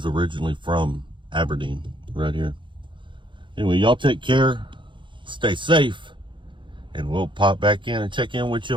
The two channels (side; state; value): left; late; 0.23 ms